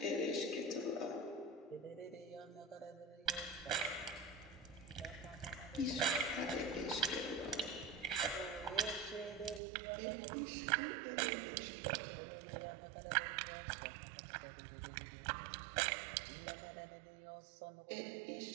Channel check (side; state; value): left; drops out; at 9.6 s